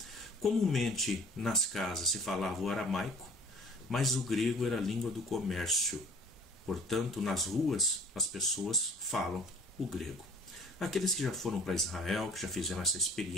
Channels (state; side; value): normal; both; correlation 0.50